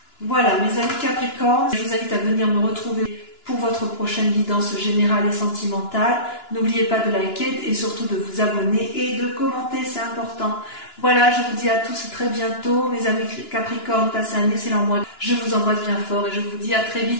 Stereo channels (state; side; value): late; right; 2.9 ms